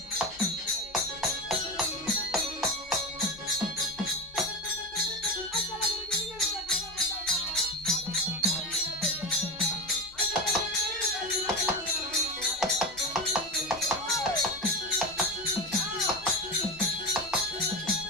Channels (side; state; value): both; normal; correlation 0.22